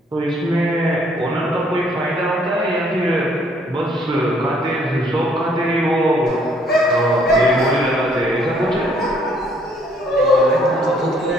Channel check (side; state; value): both; normal; correlation 0.64